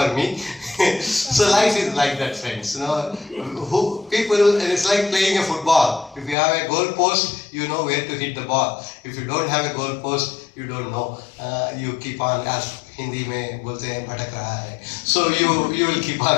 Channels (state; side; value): drops out; right; at 6.4 s